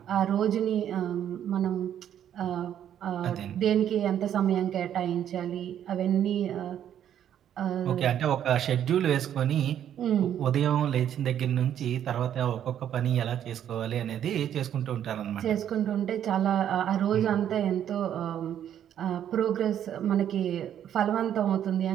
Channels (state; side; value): quieter; left; 10.1 dB